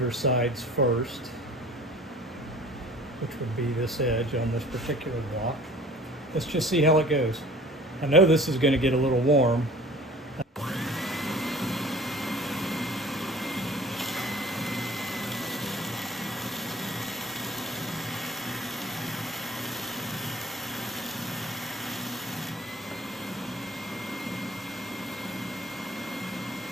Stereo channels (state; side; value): normal; both; correlation 0.47